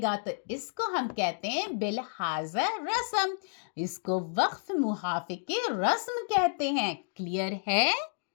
तो इसको हम कहते हैं बिलहाज़ रस्म, इसको वक्फ मुहाफ़िक़े रस्म कहते हैं। क्लियर है?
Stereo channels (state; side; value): silent; right; digital silence